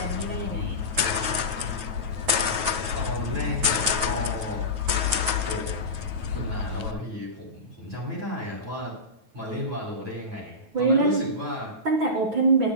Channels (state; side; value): late; left; 9.2 ms